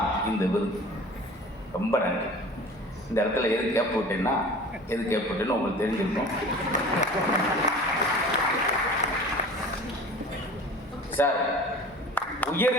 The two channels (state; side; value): normal; both; correlation 0.41